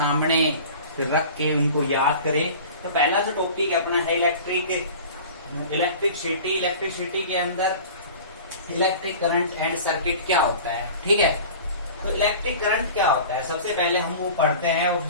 फिर रख के उनको याद करें। तो पहला जो टॉपिक अपना है इलेक्ट्रिसिटी। इलेक्ट्रिसिटी के अंदर इलेक्ट्रिक करंट एंड सर्किट क्या होता है, ठीक है। तो इलेक्ट्रिक करंट क्या होता है, सबसे पहले हम वो पढ़ते हैं और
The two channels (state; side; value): inverted; both; correlation -0.40